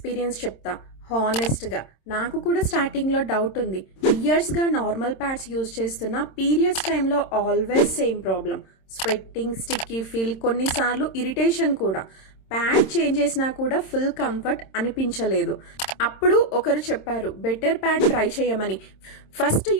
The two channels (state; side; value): late; right; 26 ms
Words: చెప్తా. హానెస్ట్గా నాకు కూడా స్టార్టింగ్లో డౌట్ ఉంది. ఇయర్స్గా నార్మల్ ప్యాడ్స్ యూజ్ చేస్తున్న పీరియడ్స్ టైంలో always same problem, sweating, sticky feel, కొన్నిసార్లు ఇరిటేషన్ కూడా. ప్యాడ్ చేంజ్ చేసినా కూడా ఫుల్ కంఫర్ట్ అనిపించలేదు. అప్పుడు ఒకరు చెప్పారు బెటర్ ప్యాడ్ ట్రై చేయమని. ఫస్ట్